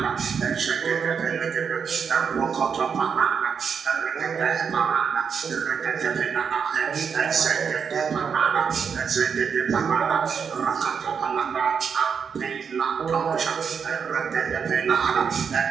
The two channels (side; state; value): left; quieter; 6.5 dB